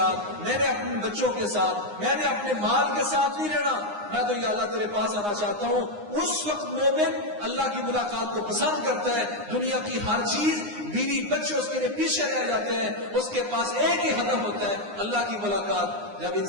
میں نے اپنے بچوں کے ساتھ، میں نے اپنے مال کے ساتھ نہیں رہنا، میں تو یا اللہ تیرے پاس آنا چاہتا ہوں. اس وقت مومن اللہ کی ملاقات کو پسند کرتا ہے. دنیا کی ہر چیز، بیوی بچے اس کے لیے پیچھے رہ جاتے ہیں، اس کے پاس ایک ہی ہدف ہوتا ہے اللہ کی ملاقات. جب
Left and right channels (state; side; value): late; left; 9.7 ms